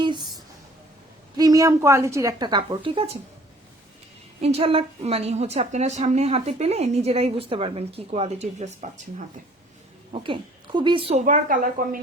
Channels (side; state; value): both; normal; correlation 0.55